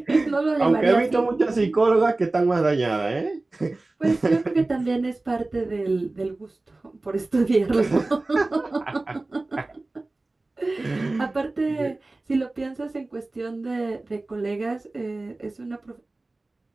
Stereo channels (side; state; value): left; quieter; 3.1 dB